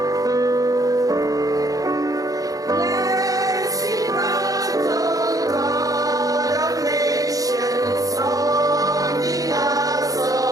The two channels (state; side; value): late; left; 0.17 ms